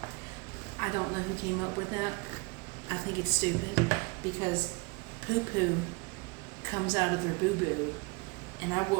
I don't know who came up with that. I think it's stupid because poo-poo comes out of their boo-boo, and I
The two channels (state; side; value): quieter; left; 28.7 dB